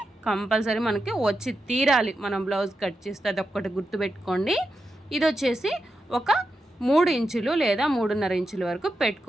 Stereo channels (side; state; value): both; normal; correlation 0.88